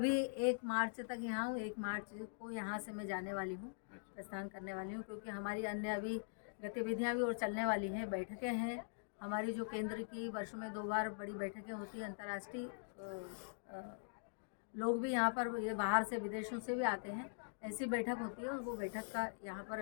1 मार्च तक यहाँ हूँ। 1 मार्च को यहाँ से मैं जाने वाली हूँ, प्रस्थान करने वाली हूँ, क्योंकि हमारी अन्य अभी गतिविधियाँ भी और चलने वाली हैं। बैठकें हैं हमारी, जो केंद्र की वर्ष में 2 बार बड़ी बैठकें होती हैं। अंतर्राष्ट्रीय लोग भी यहाँ पर, ये बाहर से विदेशों से भी आते हैं, ऐसी बैठक होती है और वो बैठक का यहाँ पर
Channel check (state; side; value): silent; right; digital silence